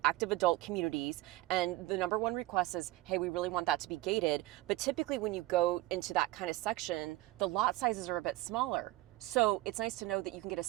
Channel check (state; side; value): quieter; left; 18.2 dB